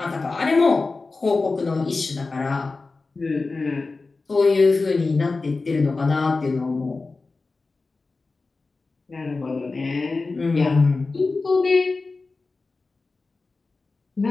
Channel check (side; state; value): right; quieter; 3.8 dB